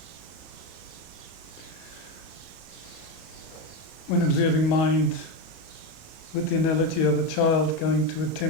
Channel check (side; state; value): right; late; 31 ms